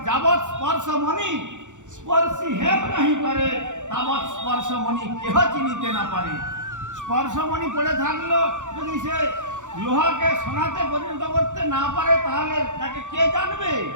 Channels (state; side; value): late; left; 0.85 ms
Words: যাবৎ স্পর্শমণি স্পর্শী হেম নাহি করে, তাবৎ স্পর্শমণি কেহ চিনিতে না পারে। স্পর্শমণি পড়ে থাকলো, যদি সে লোহাকে সোনাতে পরিণত করতে না পারে, তাহলে তাকে কে জানবে?